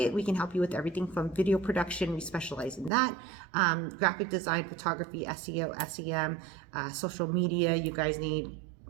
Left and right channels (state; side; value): drops out; left; at 2.9 s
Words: We can help you with everything from video production. We specialize in that. Graphic design, photography, SEO, SEM, social media. You guys need,